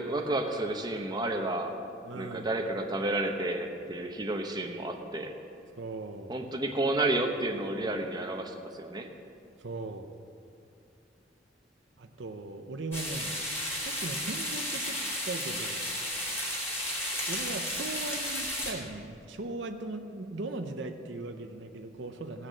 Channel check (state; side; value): normal; both; correlation 0.32